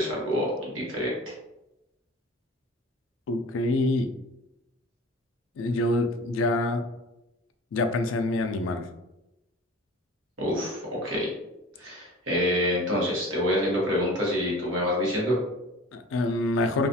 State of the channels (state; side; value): normal; both; correlation 0.41